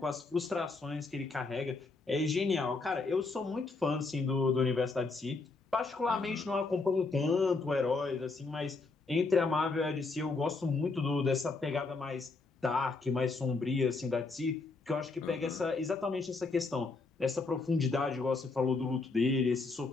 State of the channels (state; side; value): quieter; right; 3.8 dB